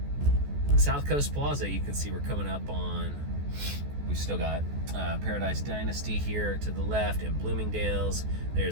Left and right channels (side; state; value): left; late; 14 ms